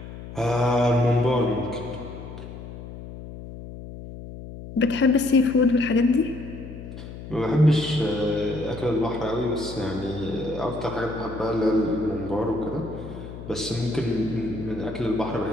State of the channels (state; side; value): noise; left; hum, 12 dB below the sound